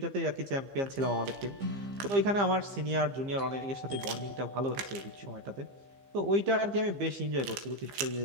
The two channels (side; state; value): left; late; 15 ms